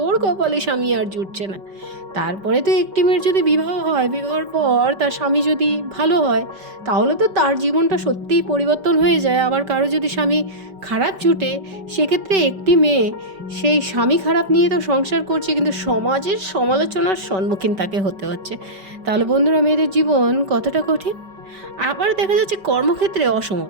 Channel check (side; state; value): left; late; 5.2 ms